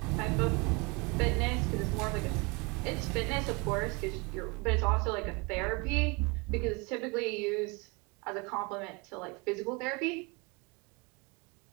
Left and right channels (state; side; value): quieter; left; 28.3 dB